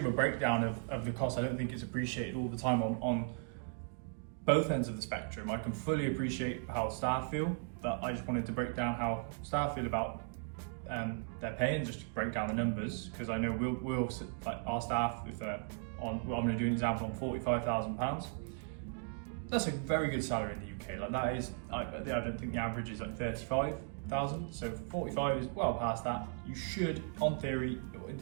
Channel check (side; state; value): left; silent; 53 dB below the other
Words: give a breakdown of the cost. I don't think it's appreciated all the time on both ends of the spectrum. I can fully appreciate how staff feel, but I just wanted to break down how staff feel about their pay and just to break down the numbers, because I know we'll like our staff, if they're on, well, I'm going to do an example on £45,000. That's a very good salary in the UK. Like that is, I don't think the average is like 35,000. So 45 is well past that. You should, in theory,